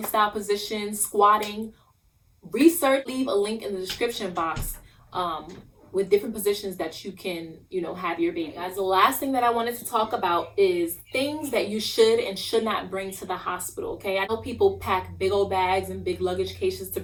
style position, squatting, research, leave a link in the description box with different positions that you can, you know, have your baby. Guys, the last thing that I wanted to talk about is things that you should and should not bring to the hospital, okay? I know people pack big old bags and big luggage cases to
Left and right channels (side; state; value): both; identical; correlation 1.00